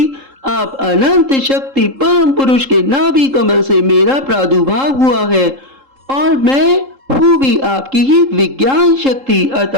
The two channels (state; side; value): late; left; 3.7 ms